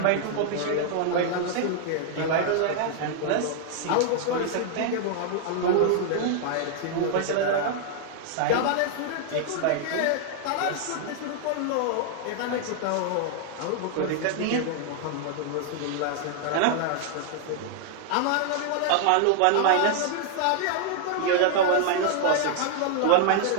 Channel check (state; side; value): different; both; correlation 0.00